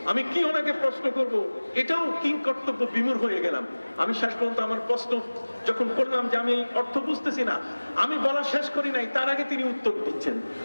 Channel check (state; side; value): inverted; both; correlation -1.00